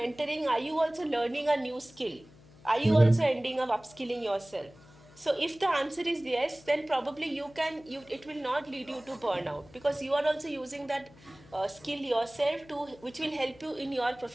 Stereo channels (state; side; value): noise; left; hum, 24 dB below the sound